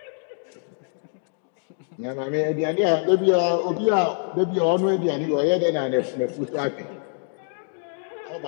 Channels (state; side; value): silent; right; digital silence